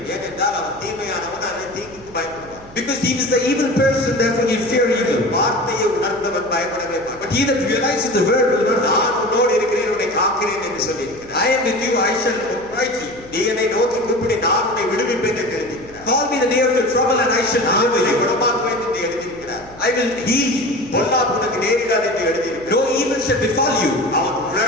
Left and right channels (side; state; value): right; noise; hum, 21 dB below the sound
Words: ஏனென்றால் அவன் தீமையானவன், அந்த தீங்குக்கு பயப்படுவான். Because he is the evil person, therefore he fear evil. வார்த்தையை உணர்ந்தவன் பயப்படவே மாட்டான். But he that realizes the word will not fear. நான் உன்னோடு இருக்கிறேன், உன்னை காக்கிறேன் என்று சொல்லியிருக்கிறார். I am with you, I shall upright you. நீ என்னை நோக்கி கூப்பிடு, நான் உன்னை விடுவிப்பேன் என்று எழுதியிருக்கிறார். Call me the day of your trouble and I shall நான் deliver உன்னை you. குணமாக்குவேன் என்று எழுதியிருக்கிறார். I will heal you. பொல்லாப்பு உனக்கு நேரிடாது என்று எழுதியிருக்கிறார். No evil shall befall you. அவன்